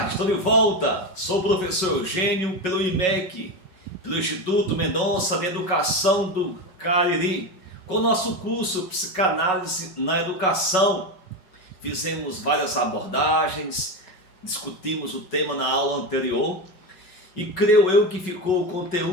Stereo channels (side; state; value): right; late; 5.4 ms